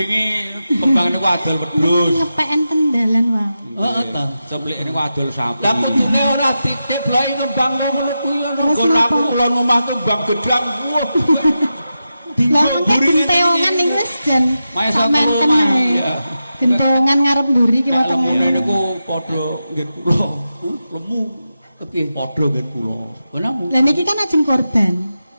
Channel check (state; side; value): inverted; both; correlation -0.90